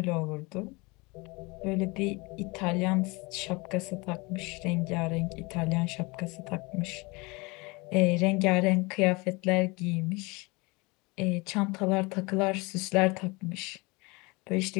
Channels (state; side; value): quieter; right; 26.2 dB